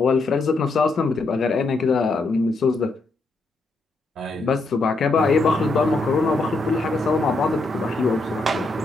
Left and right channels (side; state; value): right; quieter; 3.2 dB